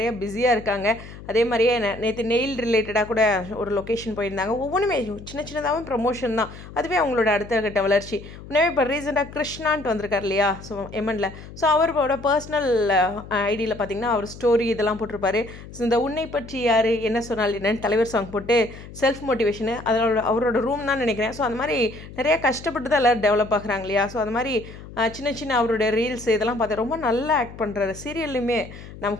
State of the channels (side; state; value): left; noise; hum, 15 dB below the sound